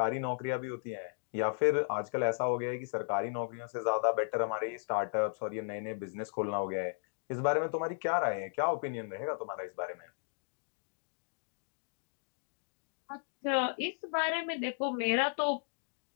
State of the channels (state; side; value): silent; right; digital silence